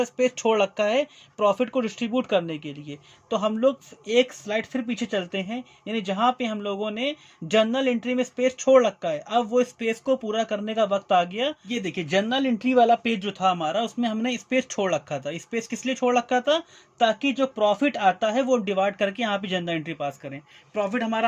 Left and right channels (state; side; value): identical; both; correlation 1.00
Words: स्पेस छोड़ रखा है प्रॉफिट को डिस्ट्रीब्यूट करने के लिए। तो हम लोग एक स्लाइड फिर पीछे चलते हैं, यानी जहां पे हम लोगों ने जर्नल एंट्री में स्पेस छोड़ रखा है, अब वो स्पेस को पूरा करने का वक्त आ गया। ये देखिए जर्नल एंट्री वाला पेज जो था हमारा, उसमें हमने स्पेस छोड़ रखा था। स्पेस किस लिए छोड़ रखा था? ताकि जो प्रॉफिट आता है वो डिवाइड करके यहाँ पे जर्नल एंट्री पास करें। प्रॉफिट हमारा